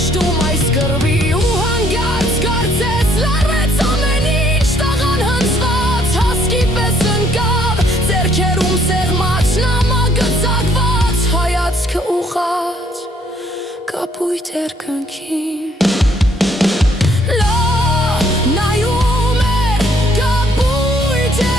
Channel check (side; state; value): both; normal; correlation 0.65